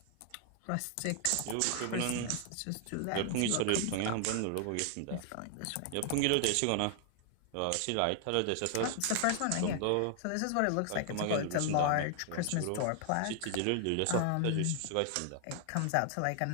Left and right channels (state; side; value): different; both; correlation 0.00